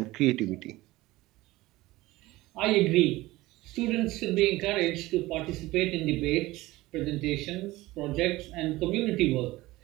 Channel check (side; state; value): left; quieter; 18.8 dB